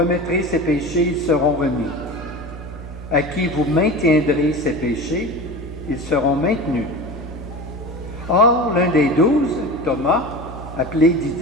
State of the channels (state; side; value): noise; right; hum, 14 dB below the sound